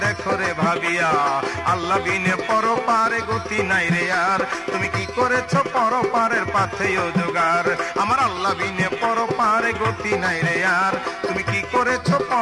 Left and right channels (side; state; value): both; identical; correlation 1.00